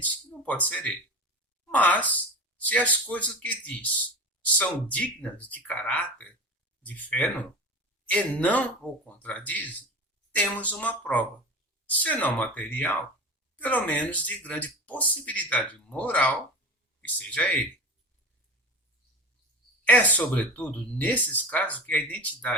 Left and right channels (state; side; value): normal; both; correlation 0.30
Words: que não pode ser ele. Mas, se as coisas que diz são dignas de caráter de Fenelon e não o contradizem, temos uma prova, se não material, pelo menos de grande possibilidade moral que seja ele. É, sobretudo, nesses casos que a